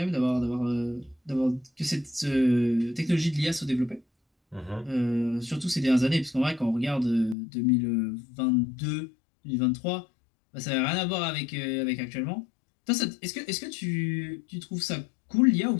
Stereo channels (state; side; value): drops out; right; at 7.4 s